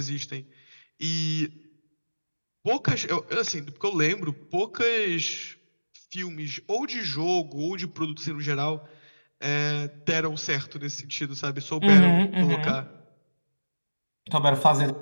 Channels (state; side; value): inverted; both; correlation -1.00